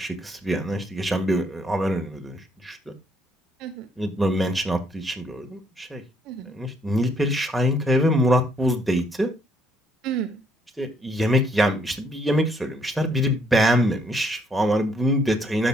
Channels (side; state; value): both; normal; correlation 0.70